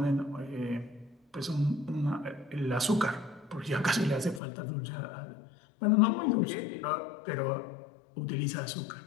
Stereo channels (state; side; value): drops out; right; at 4.4 s